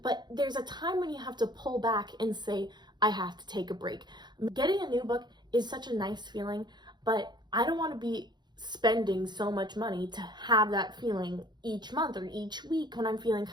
but there's a time when you have to pull back and say, I have to take a break. Getting a new book is such a nice feeling, but I don't want to be spending so much money to have that feeling each month or each week when I'm feeling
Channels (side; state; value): left; late; 0.21 ms